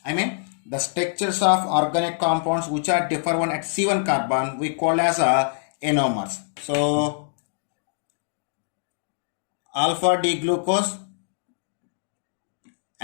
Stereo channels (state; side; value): silent; right; digital silence